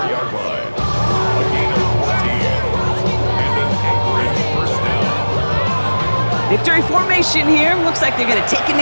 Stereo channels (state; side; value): inverted; both; correlation -1.00